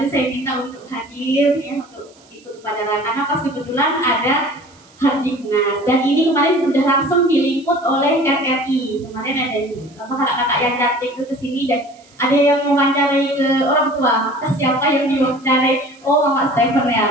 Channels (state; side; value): noise; right; hiss, 29 dB below the sound